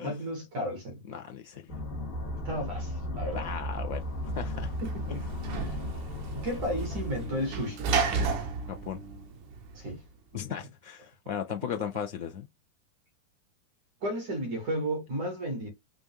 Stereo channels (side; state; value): left; late; 10 ms